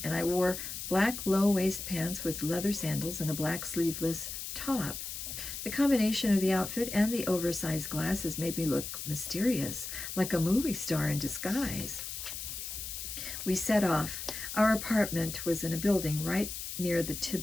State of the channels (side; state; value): left; noise; hiss, 7 dB below the sound